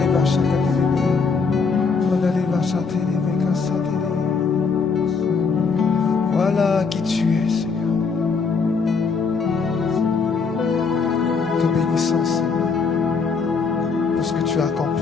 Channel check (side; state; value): right; quieter; 5.0 dB